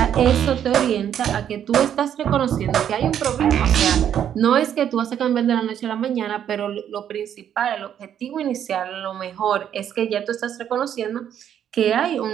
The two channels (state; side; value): quieter; left; 9.5 dB